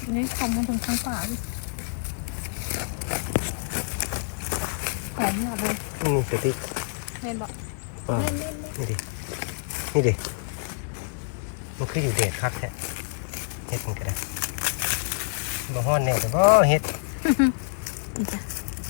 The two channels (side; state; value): right; silent; 58 dB below the other